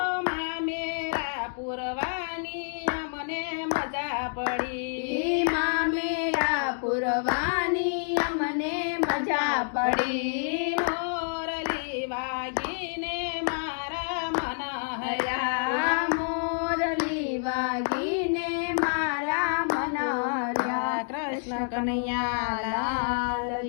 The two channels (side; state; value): right; silent; digital silence